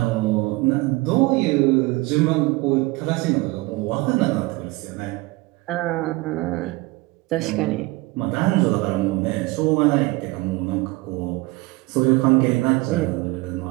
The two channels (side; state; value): left; quieter; 22.1 dB